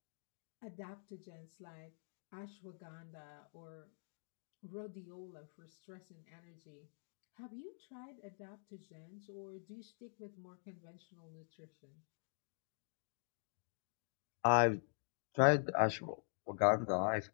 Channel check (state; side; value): silent; right; digital silence